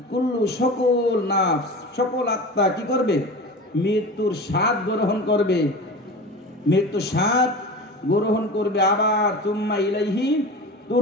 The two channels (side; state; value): both; normal; correlation 0.32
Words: কুল্লু, সকল নাফস, সকল আত্মা কি করবে? মৃত্যুর স্বাদ গ্রহণ করবে, মৃত্যুর স্বাদ গ্রহণ করবে। আবার সুম্মা ইলাইহি